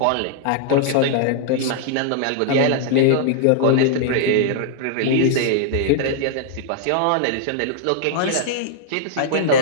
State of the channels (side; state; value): both; different; correlation -0.01